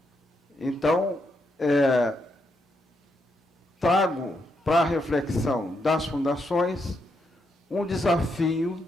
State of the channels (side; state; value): both; normal; correlation 0.80